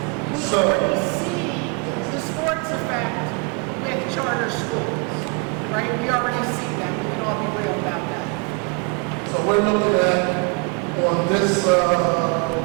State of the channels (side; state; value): left; quieter; 32.1 dB